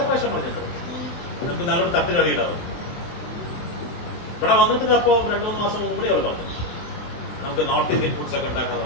പ്രാവശ്യം പറഞ്ഞിട്ടുണ്ട്. നമുക്ക് നല്ലൊരു തട്ടുകടിയിടാവും. ഇവിടെ വന്നിട്ട് അപ്പോ 2-3 മാസം മുമ്പ് കൂടി അവൾ പറഞ്ഞു നമുക്ക് നോർത്ത് ഇന്ത്യൻ ഫുഡ്സ് ഒക്കെ ഉണ്ടാക്കാൻ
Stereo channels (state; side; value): late; right; 23 ms